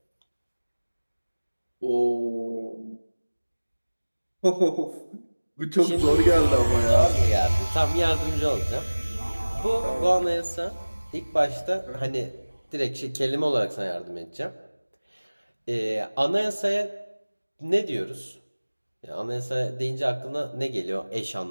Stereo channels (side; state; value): both; inverted; correlation -1.00